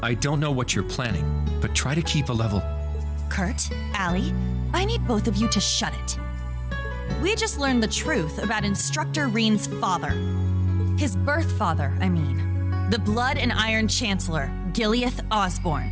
I don't know what you're planning, but try to keep a level. Kurt, Allie, I need both of you to shut it. We just learned the truth about Instructor Reen's father. His birth father, I mean. The Blood and Iron Chancellor, Gileath Osborne.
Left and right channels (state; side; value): identical; both; correlation 1.00